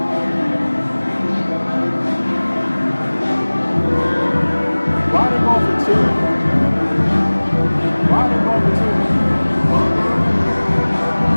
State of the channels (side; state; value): both; inverted; correlation -1.00